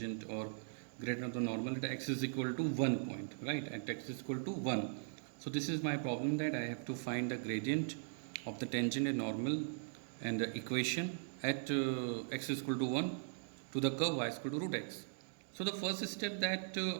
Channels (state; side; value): silent; left; digital silence